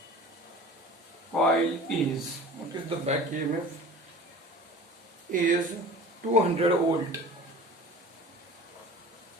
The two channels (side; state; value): both; normal; correlation 0.40